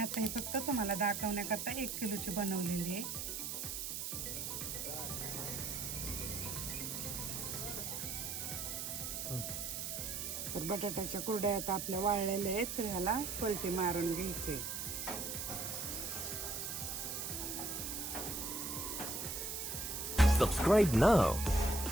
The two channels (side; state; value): right; noise; hiss, 4 dB below the sound